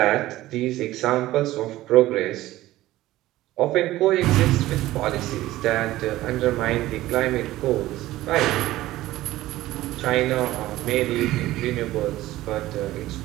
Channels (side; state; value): left; quieter; 16.1 dB